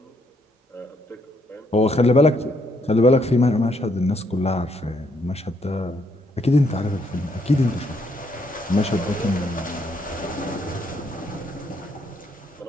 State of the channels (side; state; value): both; normal; correlation 0.73